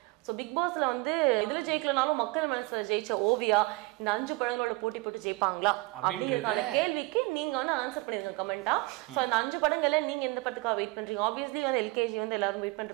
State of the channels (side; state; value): left; quieter; 23.2 dB